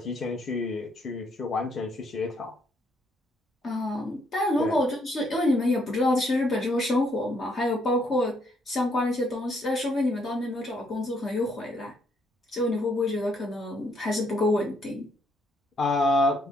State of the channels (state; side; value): normal; both; correlation 0.71